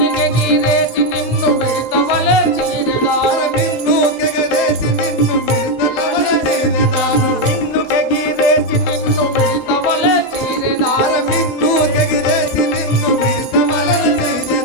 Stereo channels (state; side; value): normal; both; correlation 0.04